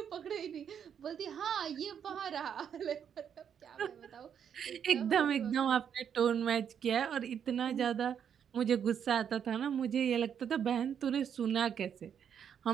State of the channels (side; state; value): left; quieter; 8.2 dB